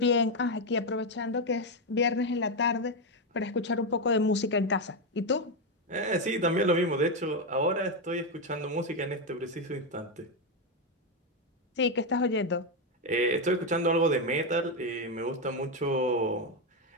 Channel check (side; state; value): both; normal; correlation 0.06